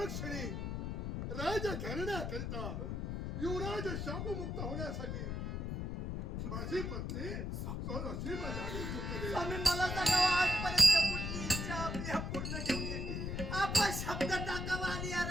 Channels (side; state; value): left; noise; rumble, 3 dB below the sound